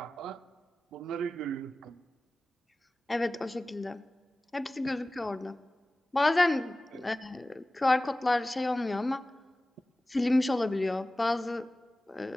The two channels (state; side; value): normal; both; correlation 0.97